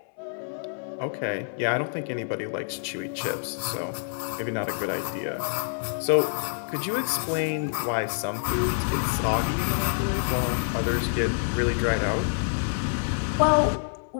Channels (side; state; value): right; silent; 60 dB below the other